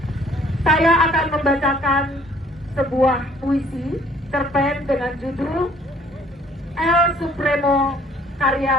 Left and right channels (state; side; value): normal; both; correlation 0.58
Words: saya akan membacakan sebuah puisi cerpen dengan judul El Supremo